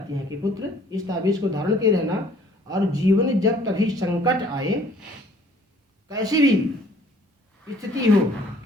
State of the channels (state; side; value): normal; both; correlation 0.57